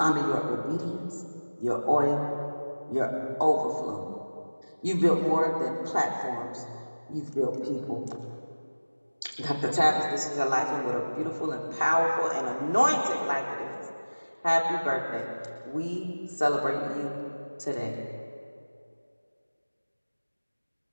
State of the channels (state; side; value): inverted; both; correlation -1.00